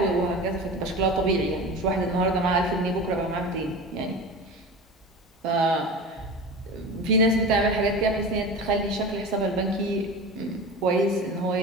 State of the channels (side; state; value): both; normal; correlation 0.31